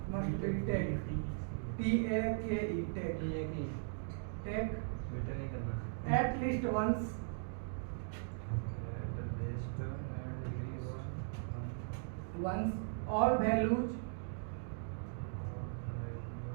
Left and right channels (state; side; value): silent; left; digital silence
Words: must be take T A K E take take बेटा नहीं करना at least once once all values